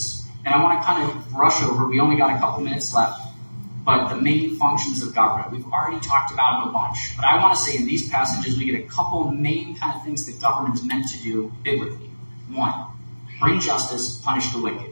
and I want to kind of brush over, we only got a couple minutes left, but the main functions of government. We've already talked about them a bunch, but I want to say in these passages we get a couple main kind of things that government is meant to do biblically. One, bring justice, punish the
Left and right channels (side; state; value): both; inverted; correlation -1.00